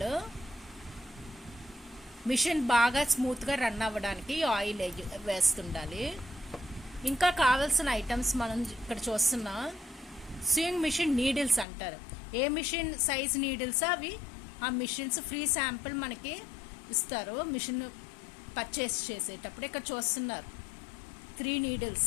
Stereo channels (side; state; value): right; drops out; at 11.7 s